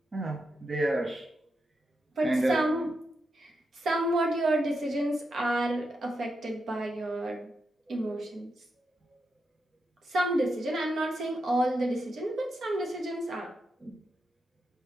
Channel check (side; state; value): both; normal; correlation 0.86